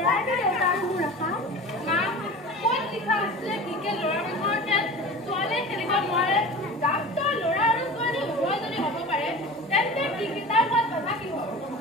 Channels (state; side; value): normal; both; correlation 0.36